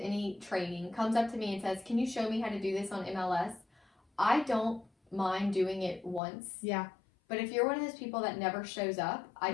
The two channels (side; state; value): right; drops out; at 6.2 s